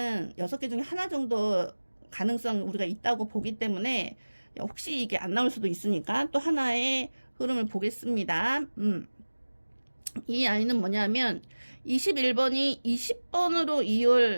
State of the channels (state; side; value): inverted; both; correlation -1.00